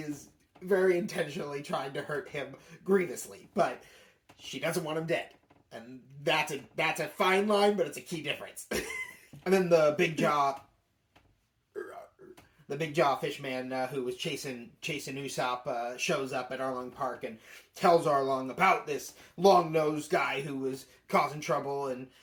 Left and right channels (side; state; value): both; identical; correlation 1.00